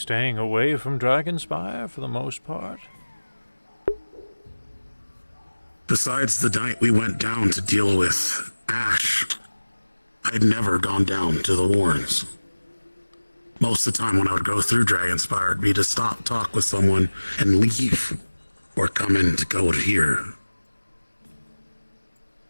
away from Dragonspire for the most part? Besides the night we went down to deal with Ash, I'd never gone down to the Warrens. Most of the time when I would go through Dragonspire, it'd be to stop, talk with someone, and leave, or come in to go to here.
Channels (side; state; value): both; inverted; correlation -1.00